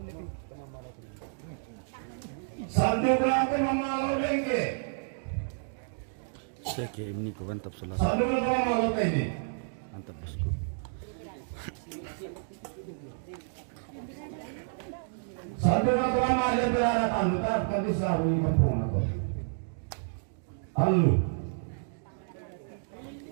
Sandukan Pemamalo Lengke. Saya kayak ini kau mantap salah. Sandukan Pemamalo Tengke. Mantap bosku. Sandukan Pemamalo Berada Tanduk. Tapi di selalu di kampung aku. Halo.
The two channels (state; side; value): silent; left; digital silence